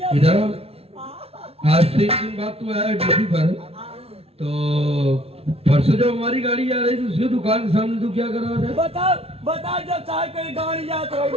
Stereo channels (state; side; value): late; left; 0.29 ms